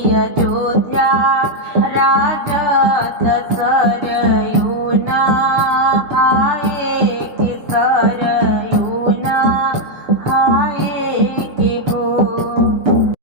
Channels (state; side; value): late; left; 6.8 ms